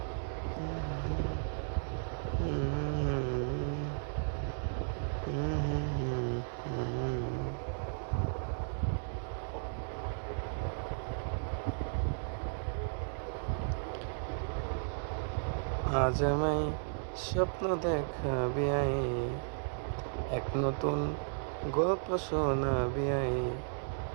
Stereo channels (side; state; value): left; silent; digital silence